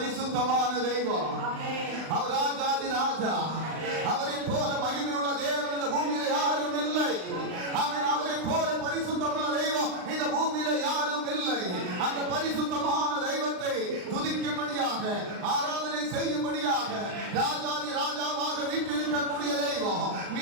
தெய்வம், அவர் ராஜாதி ராஜா. அவரை போல மகிமையுள்ள தேவன் இந்த பூமியில யாரும் இல்லை. அவரை போல பரிசுத்தமுள்ள தெய்வம் இந்த பூமியில யாரும் இல்லை. அந்த பரிசுத்தமான தெய்வத்தை துதிக்கும்படியாக, ஆராதனை செய்யும்படியாக, ராஜாதி ராஜாவாக வீற்றிருக்கக்கூடிய தெய்வம்,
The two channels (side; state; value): left; late; 39 ms